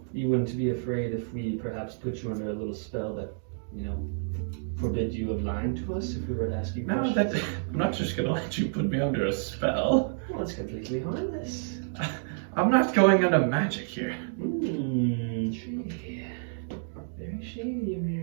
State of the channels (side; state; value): left; silent; digital silence